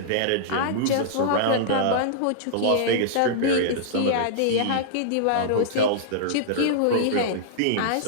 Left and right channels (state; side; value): different; both; correlation -0.02